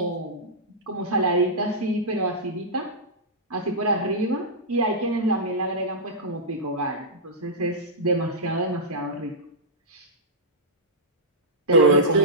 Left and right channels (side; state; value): both; normal; correlation -0.12